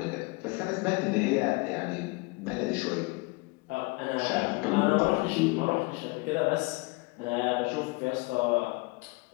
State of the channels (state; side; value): quieter; right; 26.7 dB